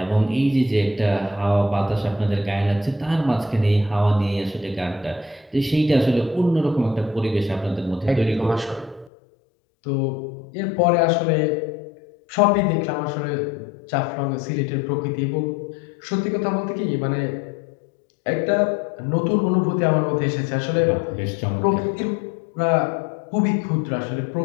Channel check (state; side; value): drops out; right; at 9.1 s